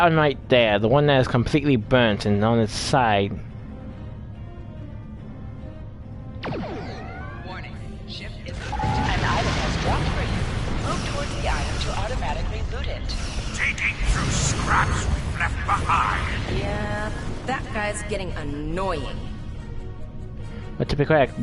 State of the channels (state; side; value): identical; both; correlation 1.00